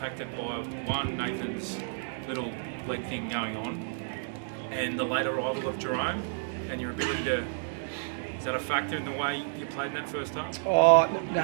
by one, Nathan's little leg thing going on, and the late arrival of Jerome, and your ability to? Is that a factor in the way you played in that first half? Oh no,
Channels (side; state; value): left; silent; 57 dB below the other